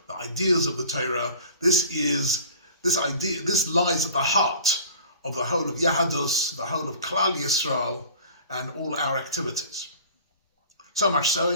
the ideas of the Torah. This lies at the heart of the whole of Yahadus, the whole of Klal Yisrael, and all our activities. So much so,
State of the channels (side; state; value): both; inverted; correlation -0.43